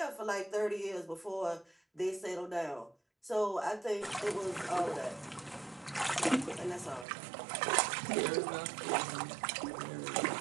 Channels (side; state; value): left; drops out; at 7.1 s